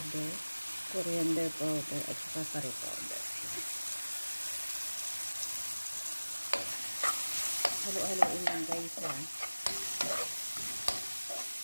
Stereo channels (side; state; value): both; inverted; correlation -1.00